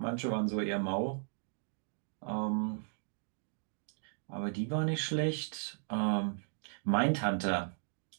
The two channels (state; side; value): silent; left; digital silence